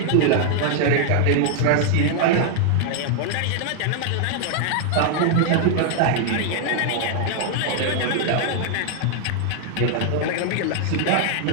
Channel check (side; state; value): both; different; correlation 0.00